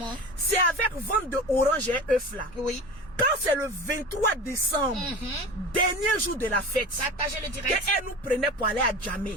C'est avec vente de orange et œuf là. Oui. Quand c'est le 23 décembre, dernier jour de la fête, partagez le direct. qu'elle nous prenait pour aller à Djamé.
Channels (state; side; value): normal; both; correlation 0.33